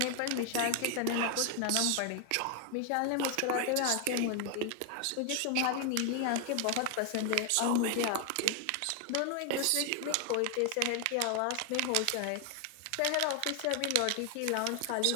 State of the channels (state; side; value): different; both; correlation 0.00